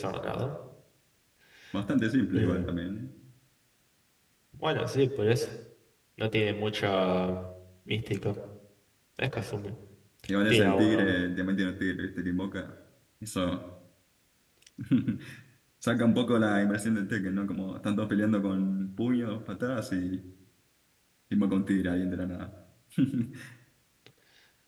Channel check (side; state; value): both; identical; correlation 1.00